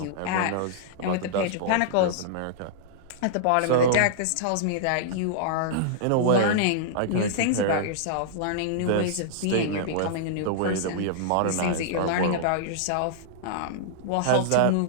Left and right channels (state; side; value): different; both; correlation -0.02